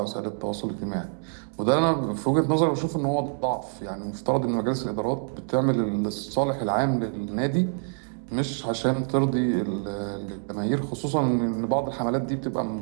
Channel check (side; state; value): left; silent; 61 dB below the other